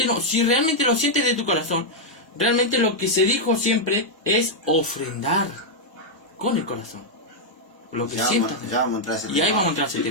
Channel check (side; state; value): both; normal; correlation -0.03